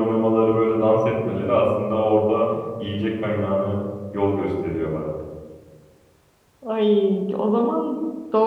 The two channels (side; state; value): both; identical; correlation 1.00